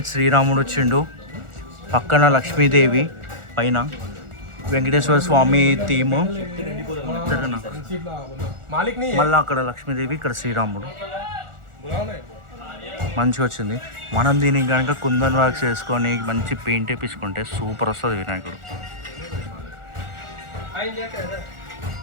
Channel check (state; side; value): late; left; 1.4 ms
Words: శ్రీరాముడు వచ్చిండు, పక్కన లక్ష్మీదేవి, పైన వెంకటేశ్వర స్వామి థీము. మాలిక్ నీ మళ్ళీ అక్కడ లక్ష్మీదేవి, ఇక్కడ శ్రీరాముడు. మంచిగా వచ్చింది. మనం దీనికి కనుక కుందన్ వర్క్స్ వేసుకొని మంచి పెయింట్ వేపించుకుంటే సూపర్ వస్తుంది వినాయకుడు.